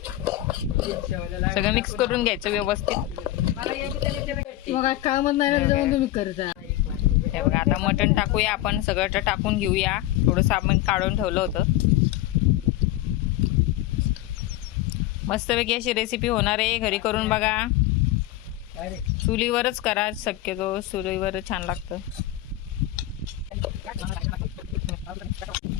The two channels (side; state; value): right; quieter; 14.8 dB